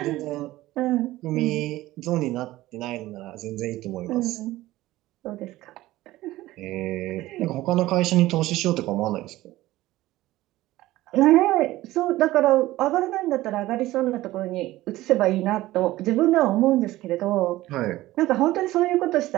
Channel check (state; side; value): quieter; left; 16.8 dB